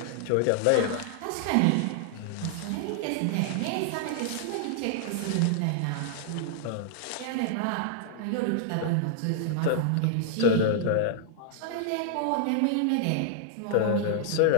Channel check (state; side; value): different; both; correlation -0.01